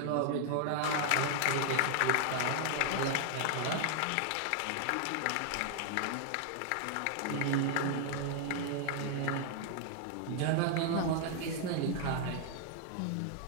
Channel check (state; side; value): different; both; correlation 0.00